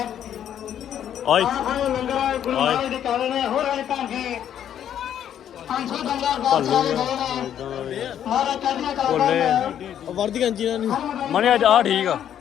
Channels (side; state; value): right; quieter; 10.0 dB